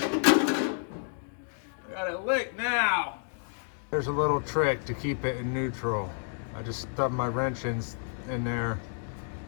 got it licked now. There's a little trick to keep it in neutral. I just stubbed my wrench in there,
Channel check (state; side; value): silent; right; digital silence